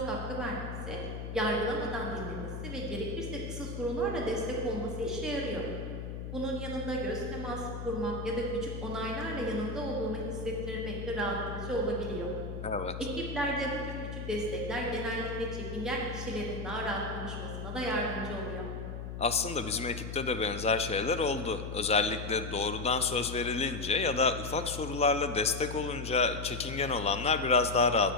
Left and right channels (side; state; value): left; noise; hum, 7 dB below the sound